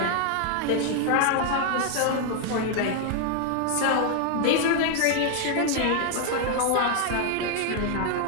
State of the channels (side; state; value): both; different; correlation 0.00